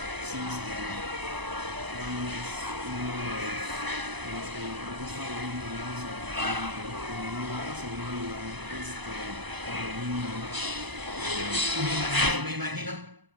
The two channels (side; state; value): left; late; 1.0 ms